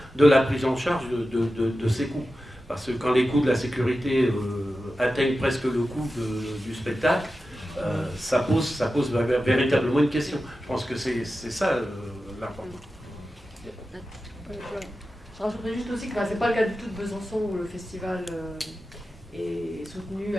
de la prise en charge de ces coûts. Parce que quand les coûts de la sécurité atteignent presque le coût du spectacle, ça pose véritablement une question. Je pense que c'est ça l'important. Je rajouterais juste aussi que c'est pas le cas du tout de Besançon où le festival est soutenu,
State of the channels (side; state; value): both; normal; correlation 0.93